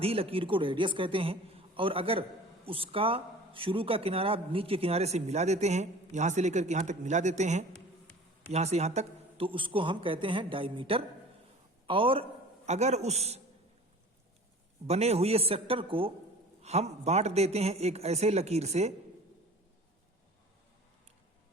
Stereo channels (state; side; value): normal; both; correlation 0.43